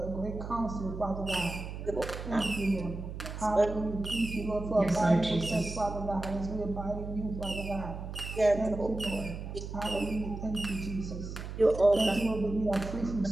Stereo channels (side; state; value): right; noise; hum, 8 dB below the sound